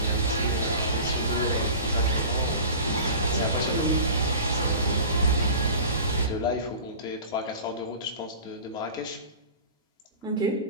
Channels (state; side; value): inverted; both; correlation -0.37